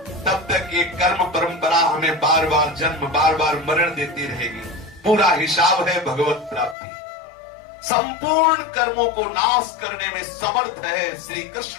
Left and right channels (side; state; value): right; drops out; at 6.8 s